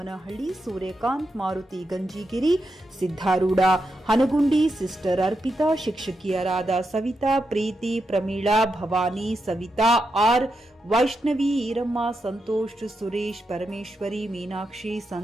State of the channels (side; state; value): both; normal; correlation 0.86